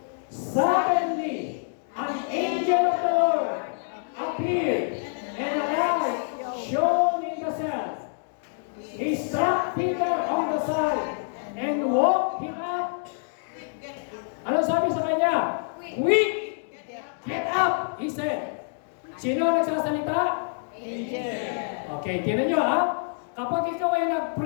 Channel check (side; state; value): right; silent; digital silence